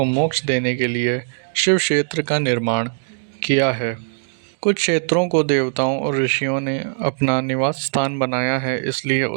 मोक्ष देने के लिए शिव क्षेत्र का निर्माण किया है। कुछ क्षेत्रों को देवताओं और ऋषियों ने अपना निवास स्थान बनाया है, इसलिए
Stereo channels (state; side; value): silent; left; digital silence